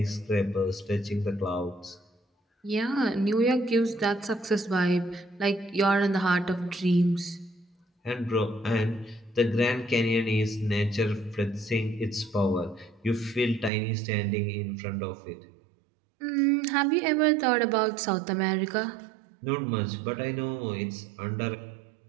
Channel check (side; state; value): left; drops out; at 13.7 s